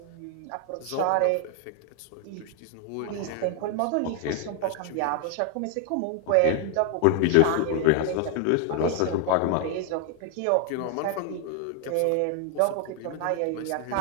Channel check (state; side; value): different; both; correlation 0.00